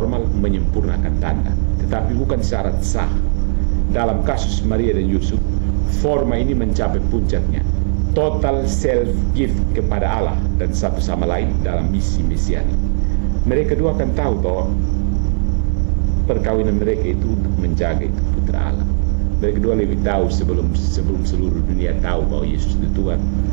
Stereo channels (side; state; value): left; silent; 58 dB below the other